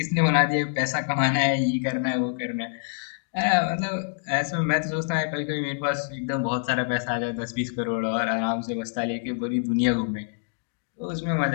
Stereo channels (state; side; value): silent; right; digital silence